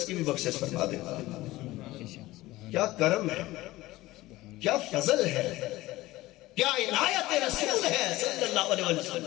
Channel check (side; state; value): right; quieter; 18.0 dB